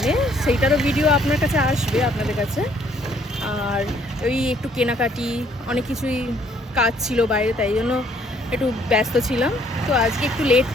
সেইটারও ভিডিও আপনার কাছে আসবে, আপনাদের কাছে। আর ওই একটু কেনাকাটি অনেক কিছুই কাজ ছিল বাইরে, তাই জন্য একটু ব্যস্ত ছিলাম। তো আজকে একটু লেট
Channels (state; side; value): normal; both; correlation 0.64